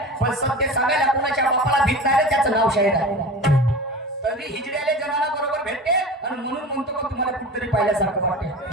पण सत्य सांगायला कुणाच्या बापाला भीत नाही त्याचं नाव शाहीर आहे. तरी हिजड्याले जनाला बरोबर भेटते आणि म्हणून म्हणतो का तुम्हाला कुठतरी पाहिल्यासारखं वाटते.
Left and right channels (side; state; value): both; normal; correlation 0.33